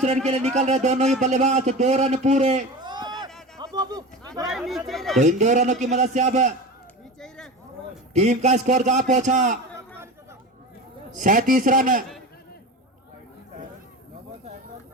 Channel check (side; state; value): both; normal; correlation 0.28